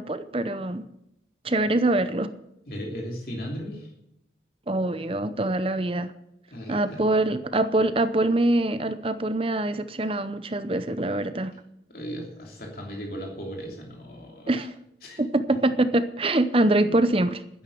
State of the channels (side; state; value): both; normal; correlation 0.61